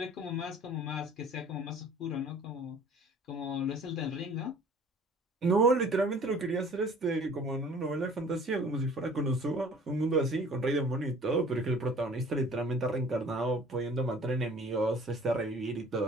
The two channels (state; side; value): normal; both; correlation 0.50